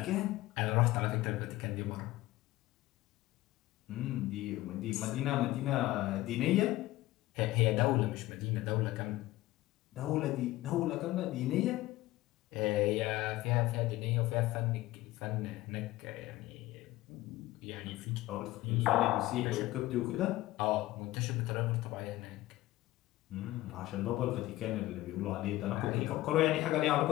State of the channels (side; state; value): right; quieter; 17.1 dB